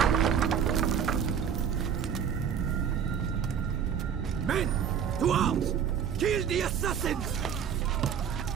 Men, to arms! Kill the assassins!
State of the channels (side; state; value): left; quieter; 7.9 dB